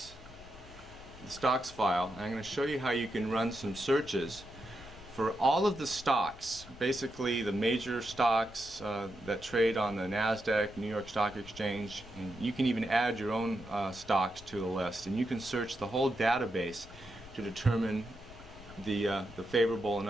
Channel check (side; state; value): left; noise; rumble, 20 dB below the sound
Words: the stocks file, and I'm going to show you how you can run some searches for all of the stocks, basically the major stocks that trade on the NASDAQ, New York Stock Exchange, and you can even add your own stocks to the list, and you can search the whole database to determine the favorable and